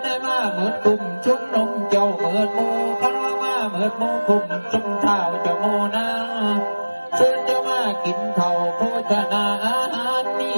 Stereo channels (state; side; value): inverted; both; correlation -1.00